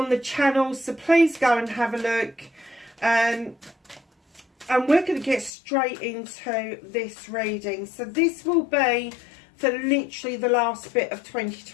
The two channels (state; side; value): drops out; right; at 5.5 s